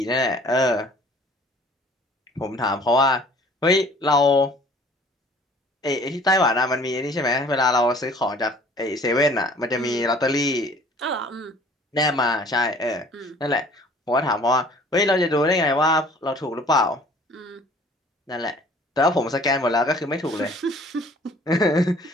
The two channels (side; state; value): both; normal; correlation 0.52